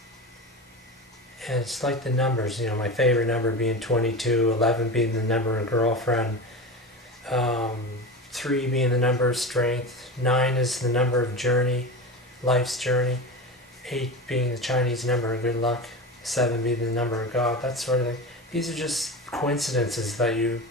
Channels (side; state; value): both; normal; correlation 0.26